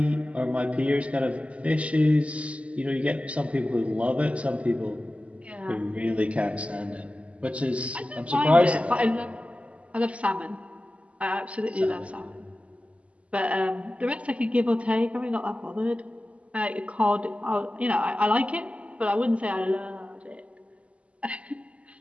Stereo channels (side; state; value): left; late; 0.063 ms